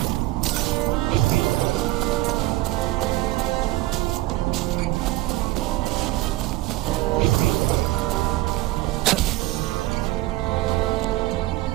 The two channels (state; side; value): quieter; left; 17.5 dB